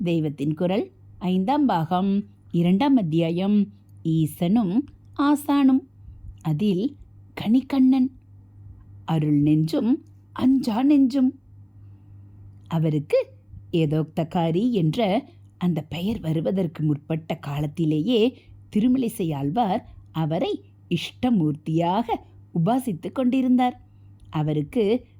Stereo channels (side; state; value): both; identical; correlation 1.00